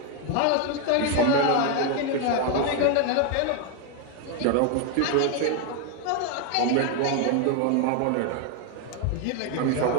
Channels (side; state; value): both; different; correlation 0.01